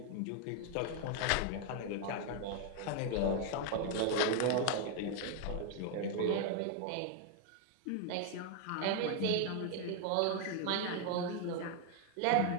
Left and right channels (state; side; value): different; both; correlation 0.00